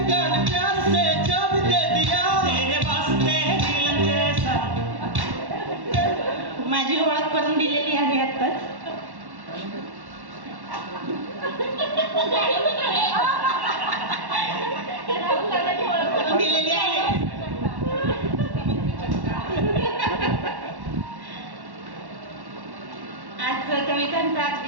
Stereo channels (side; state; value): left; late; 1.1 ms